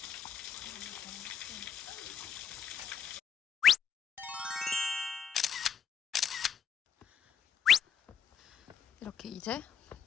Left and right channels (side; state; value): right; quieter; 7.7 dB